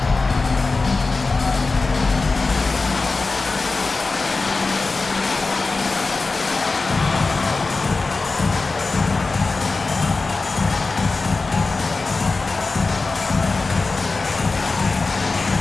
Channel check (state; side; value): quieter; right; 3.8 dB